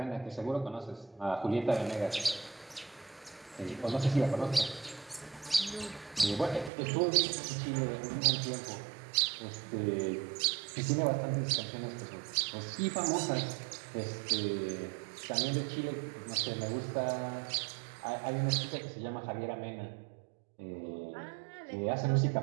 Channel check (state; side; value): drops out; left; at 6.7 s